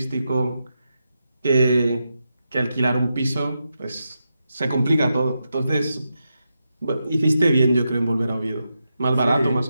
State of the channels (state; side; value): inverted; both; correlation -0.87